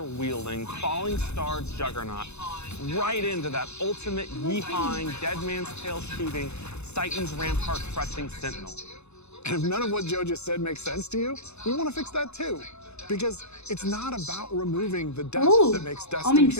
falling star juggernaut right into that ultimate yeehawing, dead man's tail shooting, Titan's rampart-crushing sentinel. And if none of what Joe just said makes sense to you, we want to fix that too. Because it's not about removing the depth that makes Destiny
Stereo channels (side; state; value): right; late; 0.81 ms